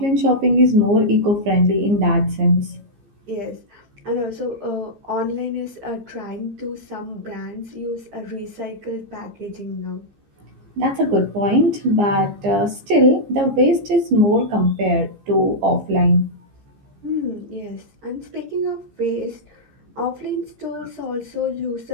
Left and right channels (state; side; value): late; left; 15 ms